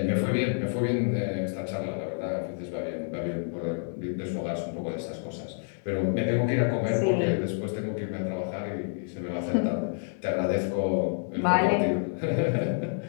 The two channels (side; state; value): right; silent; digital silence